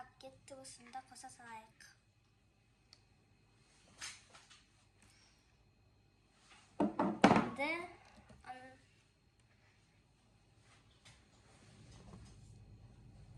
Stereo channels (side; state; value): both; identical; correlation 1.00